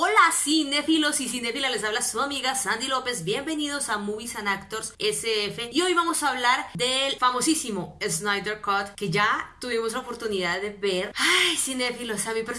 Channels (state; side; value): identical; both; correlation 1.00